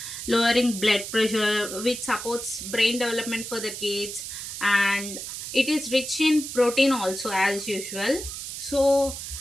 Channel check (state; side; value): noise; right; hiss, 8 dB below the sound